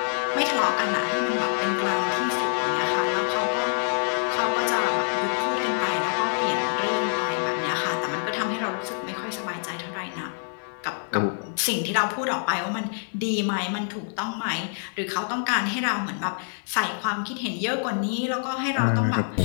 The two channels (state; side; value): silent; right; 61 dB below the other